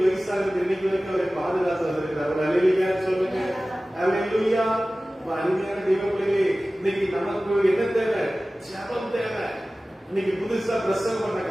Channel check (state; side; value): normal; both; correlation 0.97